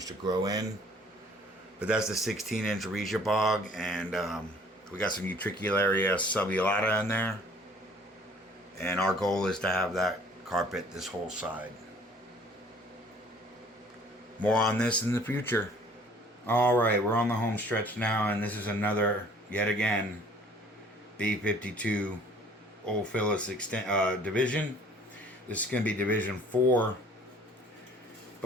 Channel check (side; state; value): both; normal; correlation 0.55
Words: to grow in. But that's the 16-inch Regia bog, and we got some Utricularia subulata in there. And our goal is to have that carpet this whole side. More on this in the future. Alright, we're on the home stretch now, and this is another, yet again, B52 Ophilis division. This is going to be Division 4.